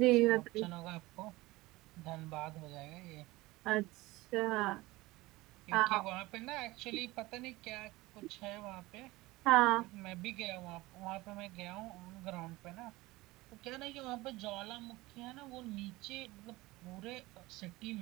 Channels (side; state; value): left; quieter; 20.1 dB